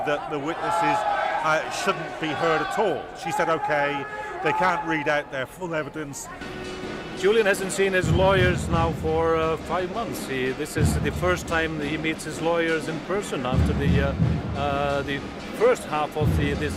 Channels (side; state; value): both; identical; correlation 1.00